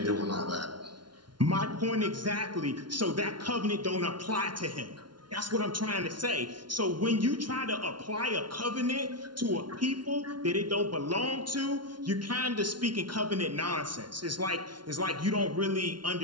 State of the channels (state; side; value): late; left; 0.71 ms